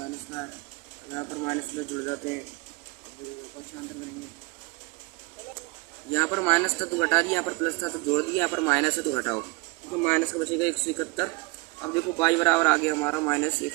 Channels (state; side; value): quieter; left; 25.5 dB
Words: का है, यहाँ पर माइनस प्लस जुड़ जाते हैं, यहाँ पर माइनस था तो घटा दिया, यहाँ पर प्लस था तो जोड़ दिया, यहाँ पर माइनस है तो घटाओ, तो माइनस का बचेगा 171। अब देखो y बराबर आ गया हमारा माइनस